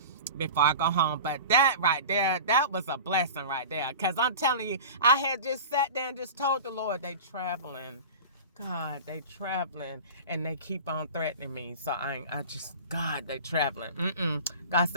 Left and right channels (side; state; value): both; inverted; correlation -0.35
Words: before I go home. But that right there, that was a blessing right there. Because I'm telling you, I had just sat there and just told the Lord, they traveling. God, they traveling. And they keep on threatening me. So God, they traveling. God